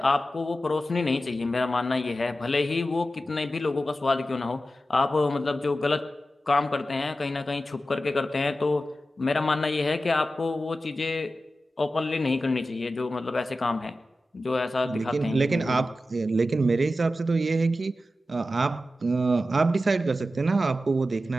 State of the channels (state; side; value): normal; both; correlation 0.92